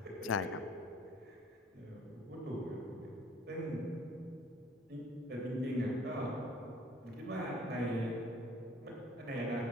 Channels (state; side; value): normal; both; correlation 0.54